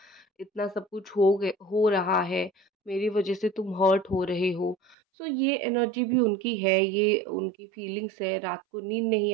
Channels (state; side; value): drops out; left; at 5.0 s